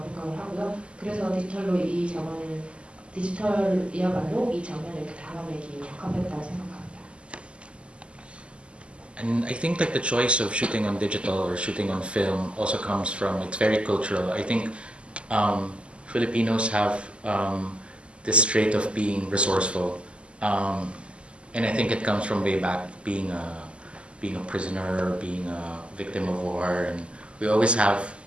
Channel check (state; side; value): late; left; 0.054 ms